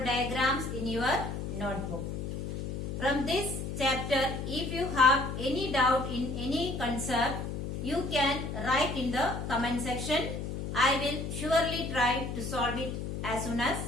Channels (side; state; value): left; noise; hum, 5 dB below the sound